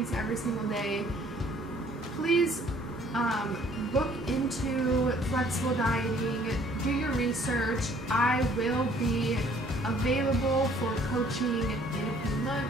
every single day, please look into flexible dieting, do your research. I will be available for coaching in a few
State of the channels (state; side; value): normal; both; correlation 0.59